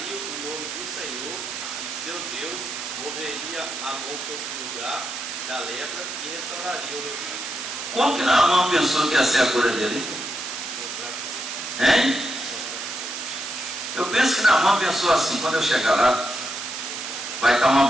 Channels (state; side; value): noise; right; hiss, 6 dB below the sound